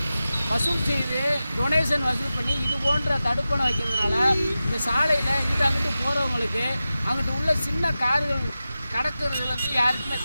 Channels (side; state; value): both; inverted; correlation -0.94